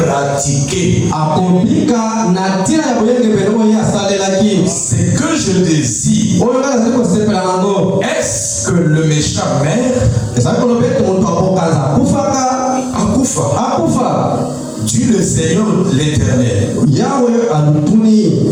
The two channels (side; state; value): both; identical; correlation 1.00